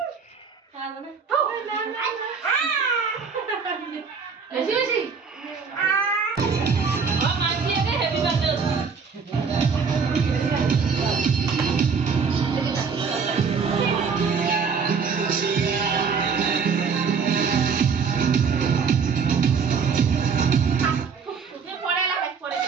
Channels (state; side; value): quieter; left; 5.7 dB